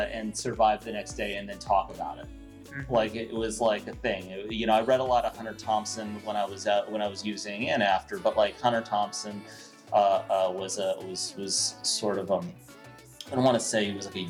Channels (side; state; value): both; identical; correlation 1.00